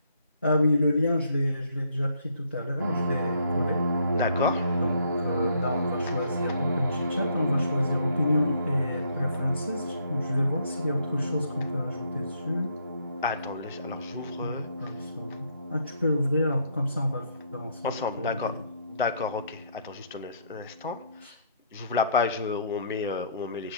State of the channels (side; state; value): both; inverted; correlation -0.68